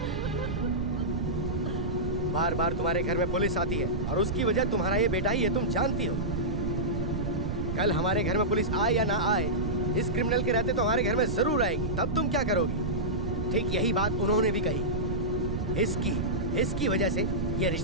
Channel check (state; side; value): noise; right; rumble, 2 dB below the sound